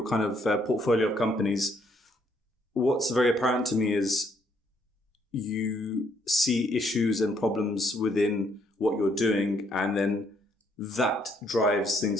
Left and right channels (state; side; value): normal; both; correlation 0.70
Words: kind of portfolio of companies, what's very apparent to me is you see issues and problems within what you're doing, and then that drives